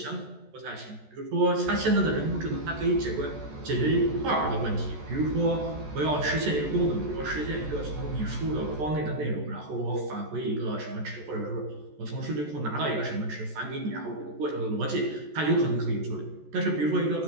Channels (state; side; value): late; left; 14 ms